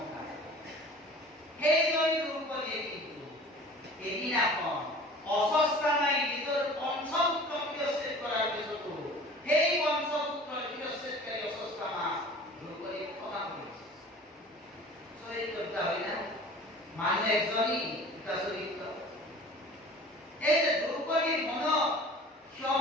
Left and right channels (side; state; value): both; normal; correlation 0.43